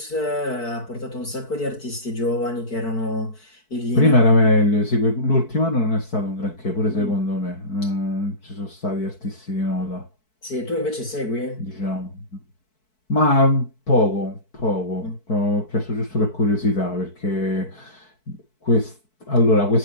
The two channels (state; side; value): late; right; 4.6 ms